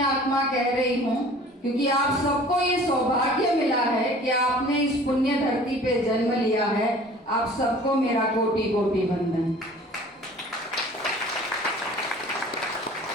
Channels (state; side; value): normal; both; correlation 0.47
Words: आत्मा कह रही हूँ क्योंकि आप सबको ये सौभाग्य मिला है कि आपने इस पुण्य धरती पे जन्म लिया है। आप सबको मेरा कोटि कोटि वंदन।